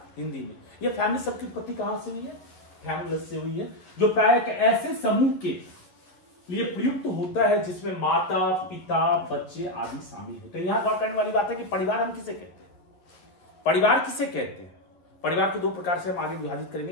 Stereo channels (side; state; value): right; late; 11 ms